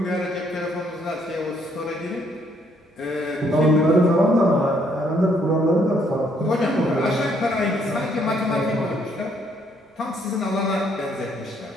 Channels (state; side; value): normal; both; correlation 0.68